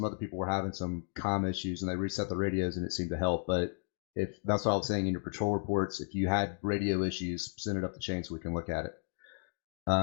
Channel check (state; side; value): silent; right; digital silence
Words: other people were having some comm issues, and they reset the radios, and it seemed to help. But if that's what I was saying in your patrol reports, if you had radio issues, send it up the chain so we can look at it.